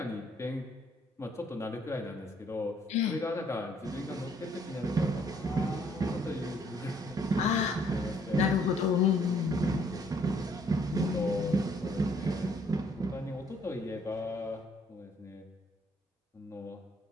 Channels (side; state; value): both; normal; correlation 0.65